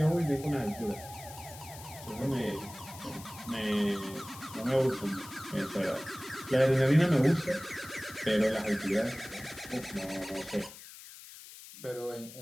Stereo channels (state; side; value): noise; left; hiss, 16 dB below the sound